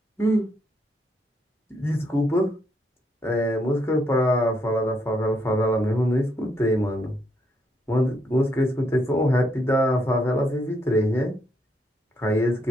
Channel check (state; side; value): normal; both; correlation 0.75